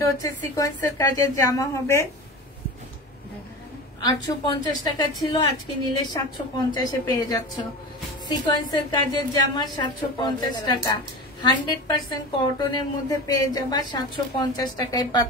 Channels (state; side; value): normal; both; correlation 0.30